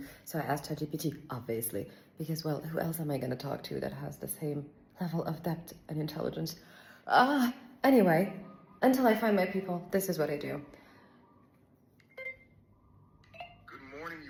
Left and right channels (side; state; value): both; identical; correlation 1.00